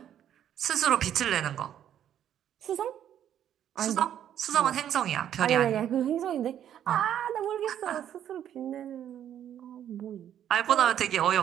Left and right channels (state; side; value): quieter; left; 10.3 dB